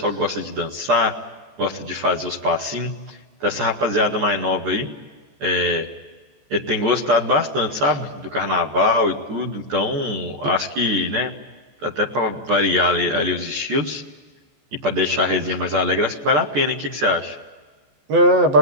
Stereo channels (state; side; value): late; left; 14 ms